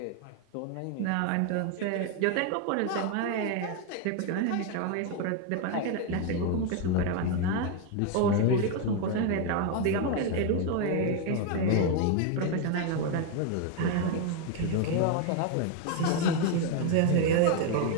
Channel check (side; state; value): both; different; correlation 0.01